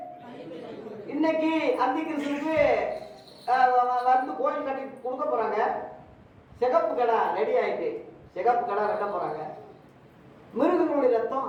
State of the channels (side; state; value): both; identical; correlation 1.00